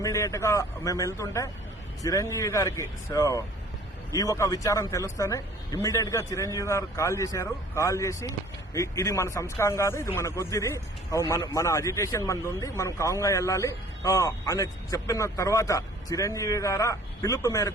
గా మేము వెళ్తుంటే చిరంజీవి గారికి ఈ ఒక విచారం తెలుస్తేనే ఇమ్మీడియట్ గా చిరంజీవి గారు కాల్ చేసి ఇది మన సంస్కారం కాదు, ఇది మన కొద్దిది, మన అజిటేషన్ మనది ఉంది, మనం కాంగా వెళ్ళాలి అని చెప్పిన తర్వాత చిరంజీవి గారు పిలుపు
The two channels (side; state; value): both; normal; correlation 0.51